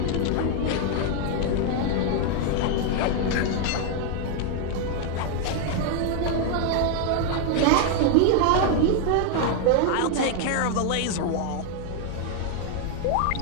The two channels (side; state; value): both; different; correlation 0.00